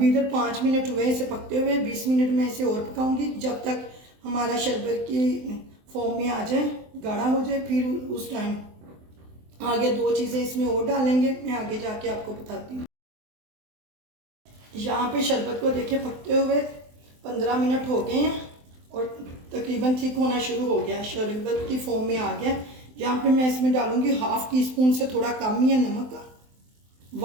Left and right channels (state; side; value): late; left; 23 ms